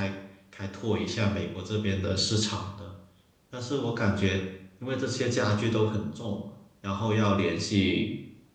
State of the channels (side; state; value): both; identical; correlation 1.00